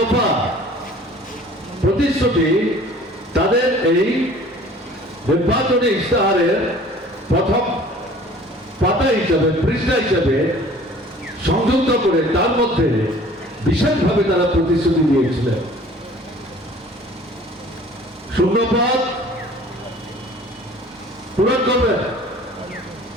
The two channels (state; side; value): normal; both; correlation 0.49